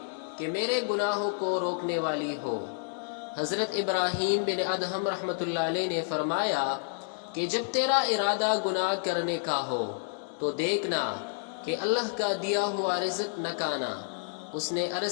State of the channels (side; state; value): right; silent; 58 dB below the other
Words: کہ میرے گناہوں کو روکنے والی ہو۔ حضرت ابراہیم بن ادہم رحمۃ اللہ علیہ نے فرمایا کہ جب تیرا ارادہ گناہ کرنے کا ہو تو دیکھنا کہ اللہ کا دیا ہوا رزق نہ کھانا۔ اس نے